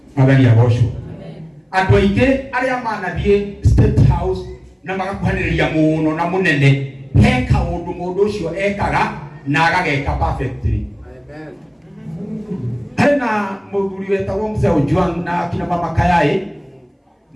Magani ya gosho. Andu aingi aria manathie State House na magakuhaniriria muno na munene he kaundu mundu ucio ekaga na agageka perfectly. Amen. Hena muthuri wetagwo Mzee Ojwang na kina mama Kayai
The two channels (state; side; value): identical; both; correlation 1.00